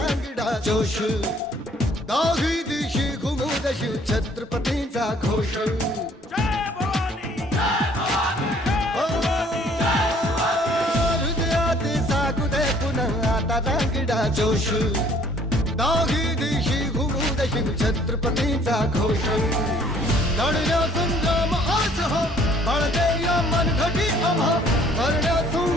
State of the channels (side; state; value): both; normal; correlation 0.58